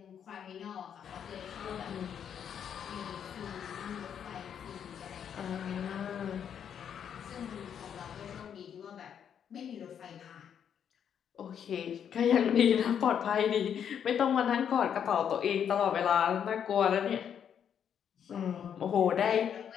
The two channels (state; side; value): quieter; right; 8.4 dB